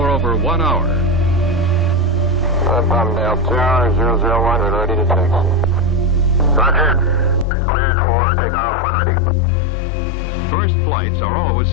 over 1 hour. Palmdale Tower 001, we're ready to taxi. Roger. Cleared for takeoff when ready. First flights are always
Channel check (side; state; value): right; drops out; at 7.5 s